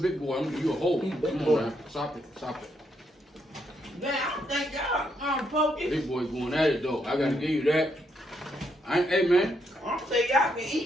boy. You a whole one. Big Come boy. on, man. Stop it. Stop it. Man, I don't think y'all Pokey. Big boy going at it though. I gotta give you that. Hey man. I don't think y'all can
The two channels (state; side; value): normal; both; correlation 0.77